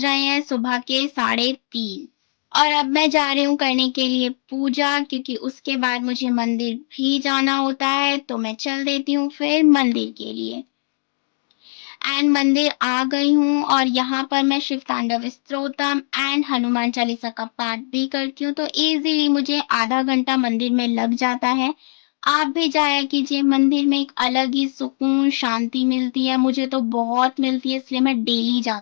हैं सुबह के 3:30 और अब मैं जा रही हूँ करने के लिए पूजा, क्योंकि उसके बाद मुझे मंदिर भी जाना होता है। तो मैं चल देती हूँ फिर मंदिर के लिए। एंड मंदिर आ गई हूँ और यहाँ पर मैं शिव तांडव स्तोत्रम एंड हनुमान चालीसा का पाठ भी करती हूँ। तो इजीली मुझे आधा घंटा मंदिर में लग जाता है। आप भी जाया कीजिए, मंदिर में एक अलग ही सुकून शांति मिलती है, मुझे तो बहुत मिलती है, इसलिए मैं डेली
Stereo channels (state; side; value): silent; right; digital silence